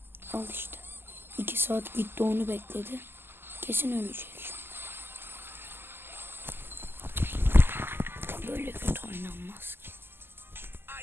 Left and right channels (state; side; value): late; left; 0.11 ms